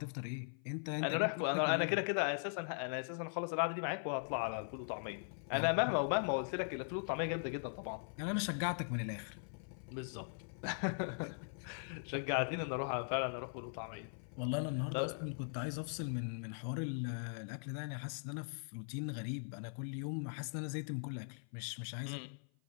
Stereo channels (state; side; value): silent; right; 51 dB below the other